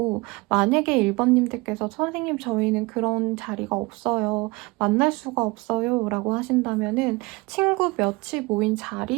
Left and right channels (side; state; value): left; quieter; 24.2 dB